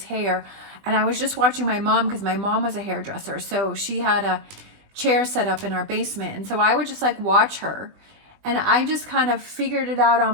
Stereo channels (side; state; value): left; late; 20 ms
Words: hair, and I was just watching my mom, because my mom was a hairdresser. So she had a chair set up in our basement. And so I would just like watch her, and I just kind of figured it out on